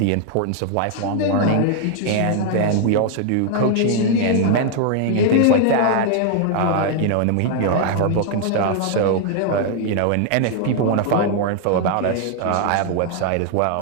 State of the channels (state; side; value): different; both; correlation 0.00